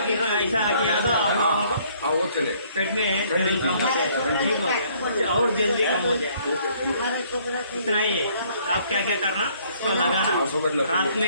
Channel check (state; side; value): inverted; both; correlation -0.62